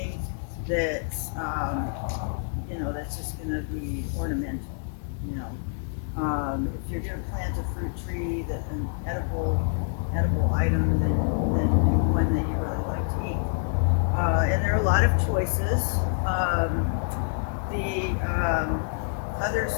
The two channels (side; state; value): right; silent; 60 dB below the other